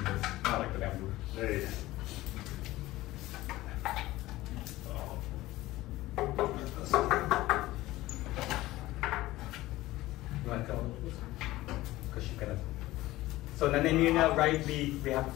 this. Not like the bamboo. Hey. You want to go? Because she's gonna. So Nanay Mirna, right? We have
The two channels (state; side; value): quieter; right; 17.4 dB